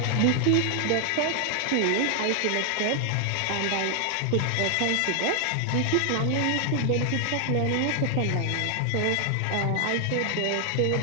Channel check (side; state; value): both; different; correlation 0.00